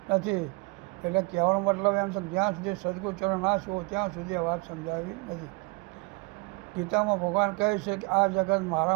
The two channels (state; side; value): quieter; left; 27.6 dB